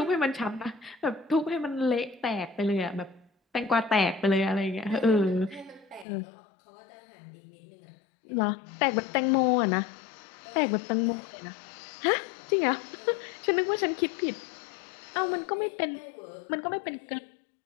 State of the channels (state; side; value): drops out; right; at 6.1 s